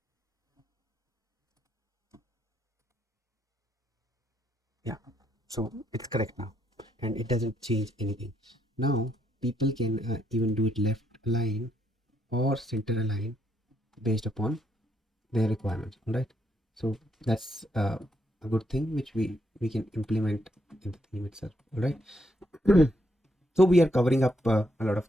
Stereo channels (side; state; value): both; normal; correlation 0.76